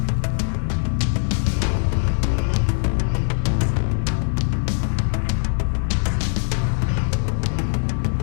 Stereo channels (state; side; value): silent; right; digital silence